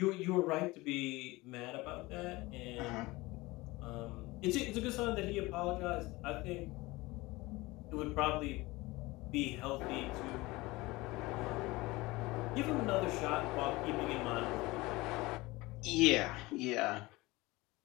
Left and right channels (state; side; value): quieter; right; 21.3 dB